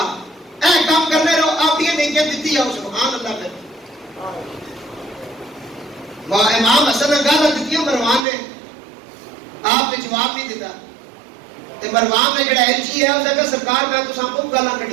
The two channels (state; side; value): drops out; left; at 8.2 s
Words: اے کام کرنے رہو, آپ یہ نیکیاں دیتی جاؤ. سبحان اللہ. پھر امام حسن نے گالا دیتی مروان نے, آپ نے جواب نہیں دیتا. مروان نے جڑا ایلچی ہے اس نے سرکار میں تو سب کو گالا